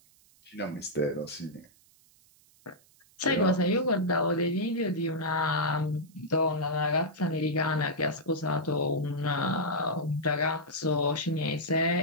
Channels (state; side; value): noise; right; hiss, 30 dB below the sound